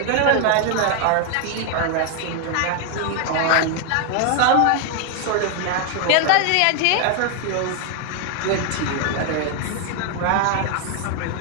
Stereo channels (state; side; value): different; both; correlation 0.01